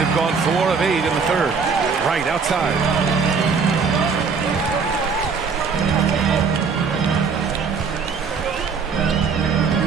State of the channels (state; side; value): quieter; left; 5.4 dB